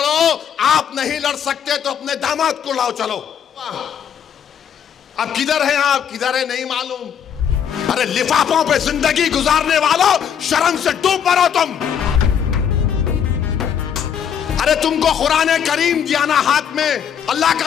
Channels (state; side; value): quieter; right; 8.3 dB